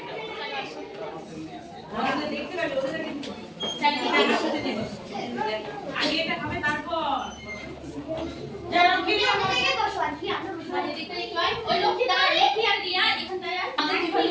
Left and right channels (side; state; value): both; identical; correlation 1.00